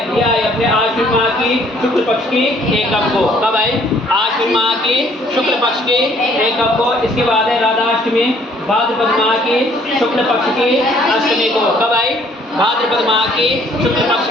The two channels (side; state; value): both; normal; correlation 0.61